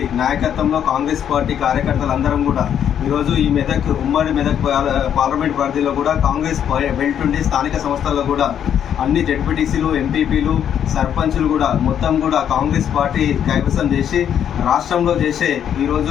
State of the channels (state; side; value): quieter; right; 9.2 dB